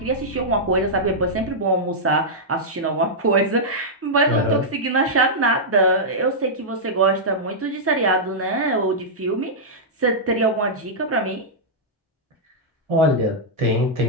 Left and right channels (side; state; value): both; normal; correlation -0.09